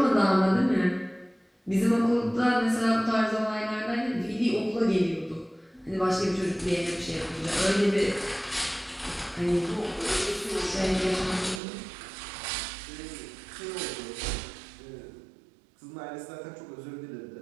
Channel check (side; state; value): left; drops out; at 11.6 s